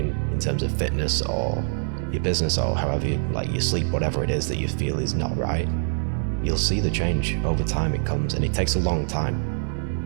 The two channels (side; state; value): left; silent; digital silence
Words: in terms of fitness or your business or however you, like your sleep, whatever it is that you feel is not right, you'll see the change. Over time it comes, and it takes a long time.